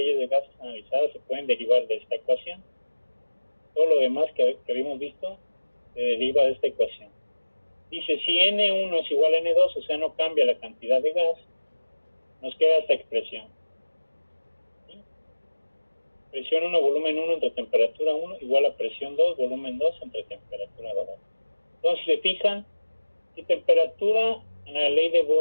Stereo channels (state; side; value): inverted; both; correlation -1.00